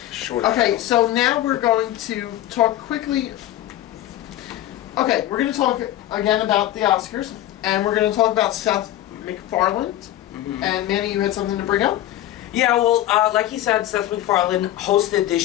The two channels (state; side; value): quieter; right; 13.6 dB